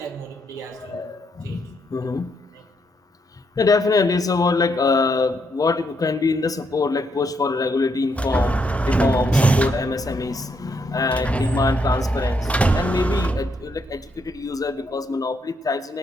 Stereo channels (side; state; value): both; normal; correlation 0.76